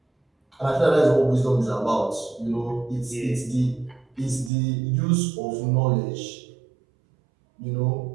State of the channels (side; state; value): left; drops out; at 4.5 s